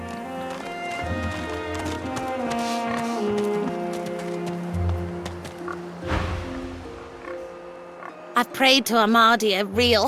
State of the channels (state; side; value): identical; both; correlation 1.00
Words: I've prayed to Amadia real